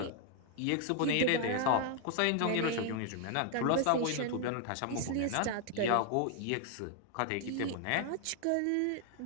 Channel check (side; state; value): both; different; correlation 0.00